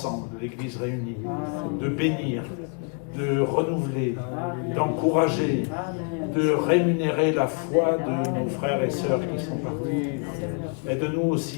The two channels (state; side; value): quieter; right; 38.5 dB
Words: l'Église réunie, de bénir, de renouveler, d'encourager, de rémunérer la foi de nos frères et sœurs qui sont partis. Aide-nous